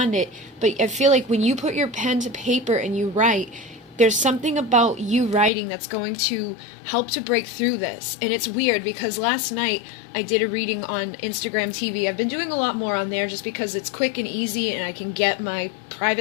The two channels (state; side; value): drops out; right; at 5.5 s